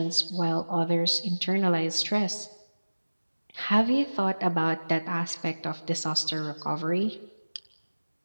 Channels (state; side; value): inverted; both; correlation -1.00